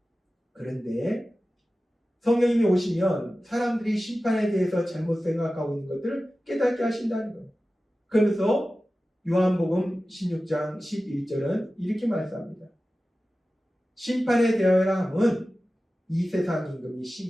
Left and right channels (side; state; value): both; normal; correlation 0.95